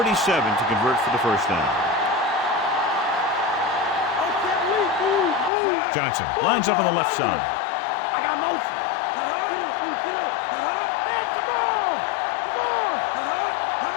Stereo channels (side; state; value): right; drops out; at 5.5 s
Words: to convert for the first down. Johnson lines up on the left side.